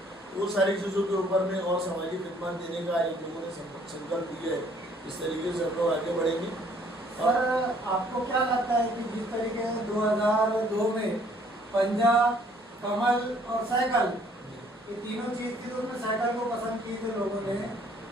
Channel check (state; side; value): normal; both; correlation 0.61